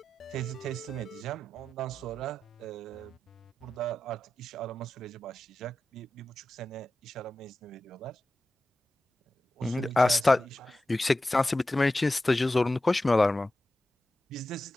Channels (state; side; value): normal; both; correlation 0.93